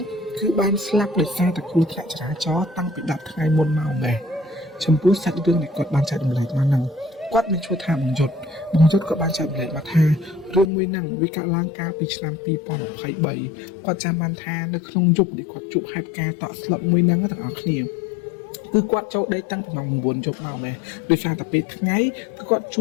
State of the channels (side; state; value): right; drops out; at 10.7 s